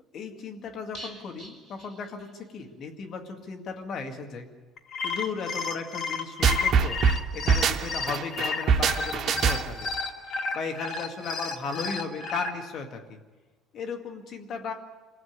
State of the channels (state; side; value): normal; both; correlation 0.55